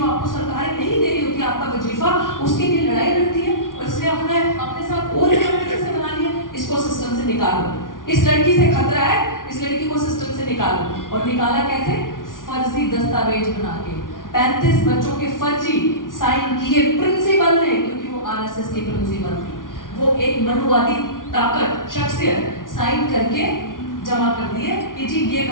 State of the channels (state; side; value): late; right; 0.89 ms